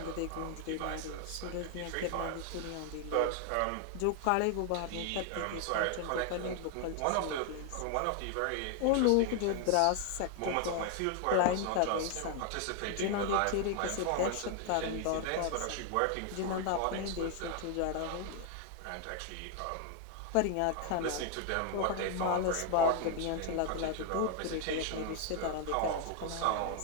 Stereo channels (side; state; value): both; different; correlation 0.00